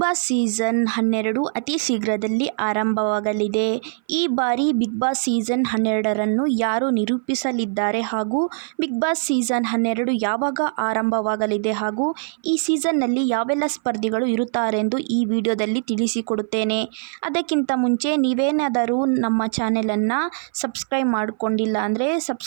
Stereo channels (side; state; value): left; silent; 58 dB below the other